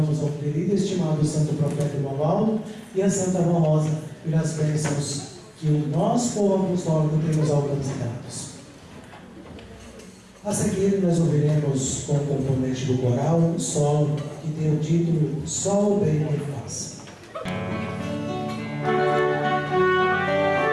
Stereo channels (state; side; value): identical; both; correlation 1.00